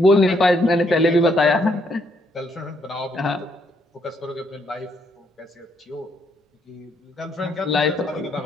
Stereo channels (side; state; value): both; normal; correlation 0.72